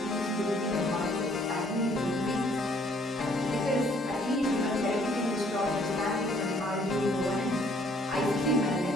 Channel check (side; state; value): both; normal; correlation 0.62